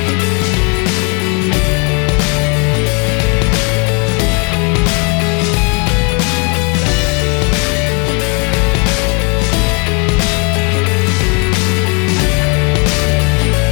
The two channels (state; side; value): quieter; right; 33.4 dB